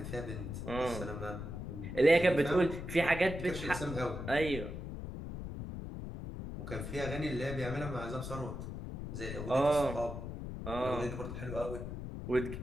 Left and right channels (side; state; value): left; noise; rumble, 7 dB below the sound